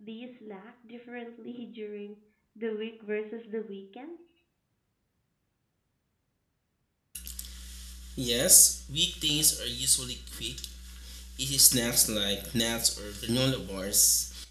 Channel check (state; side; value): identical; both; correlation 1.00